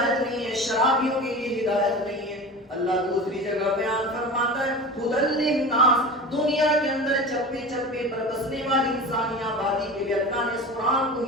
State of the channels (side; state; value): both; normal; correlation 0.32